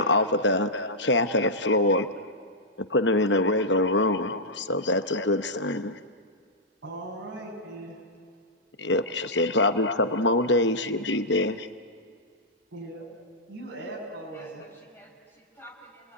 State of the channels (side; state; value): both; normal; correlation -0.10